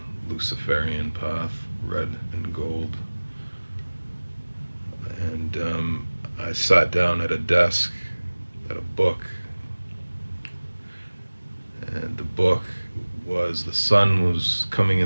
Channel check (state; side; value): inverted; both; correlation -1.00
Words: Luciferian path, red and gold. And I sat down at a desk, at a book, and the book was the sun was coming